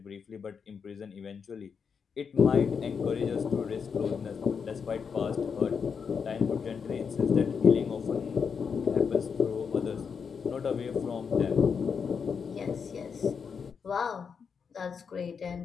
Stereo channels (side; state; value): right; quieter; 6.2 dB